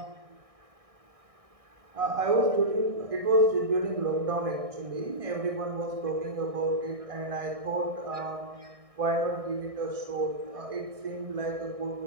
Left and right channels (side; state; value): left; late; 1.6 ms